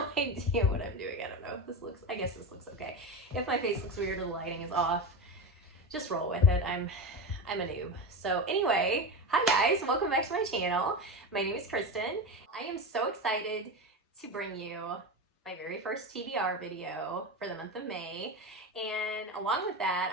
idea what I'm doing. I don't know if this looks, I guess this looks okay. If my face looks weird or the lighting is off, just roll with it. I'm a noob. So anyway, hi guys, welcome back to my channel. My name is Kristin. I am so excited to bring you my very first TBR video for the month of May. And along with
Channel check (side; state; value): both; normal; correlation 0.21